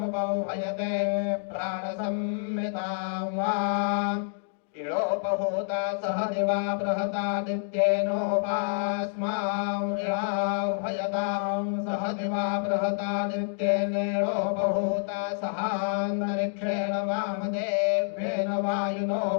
प्राणसंहितां वा इळोपहूता सह दिवा बृहतादित्येनोपास्मां इळाह्वयतां सह दिवा बृहतादित्येनेळोपहूता सहान्तरिक्षेण वामदेव्येन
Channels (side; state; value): right; silent; digital silence